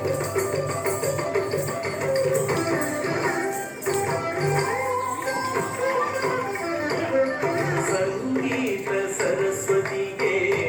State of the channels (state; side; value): identical; both; correlation 1.00